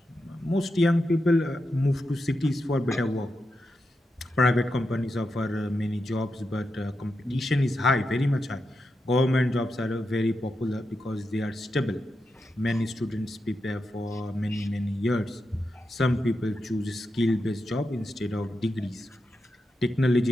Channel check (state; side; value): normal; both; correlation 0.87